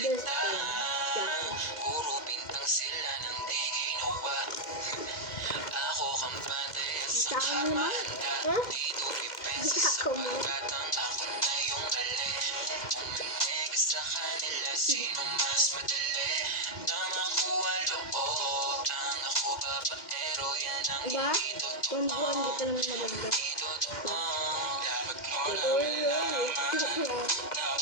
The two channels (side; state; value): right; late; 2.1 ms